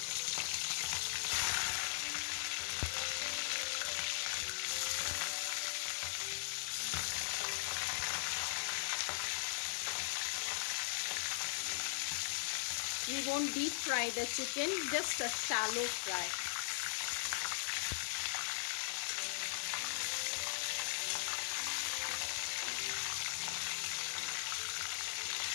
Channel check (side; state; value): right; silent; digital silence